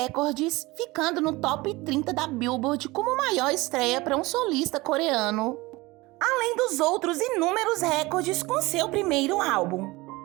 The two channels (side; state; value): left; quieter; 21.7 dB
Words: ficando no top 30 da Billboard como maior estreia para um solista coreano, além dos outros inúmeros recordes com seu primeiro álbum.